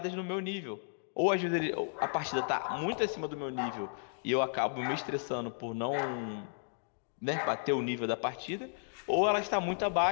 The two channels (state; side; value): silent; right; digital silence